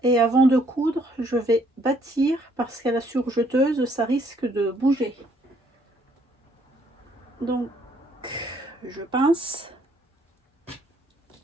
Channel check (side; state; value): both; normal; correlation 0.66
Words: et avant de coudre, je vais bâtir parce qu'à la surjeteuse, ça risque de bouger. Donc, je pince,